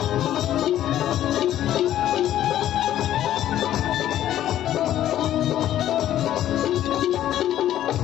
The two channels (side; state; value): right; quieter; 12.2 dB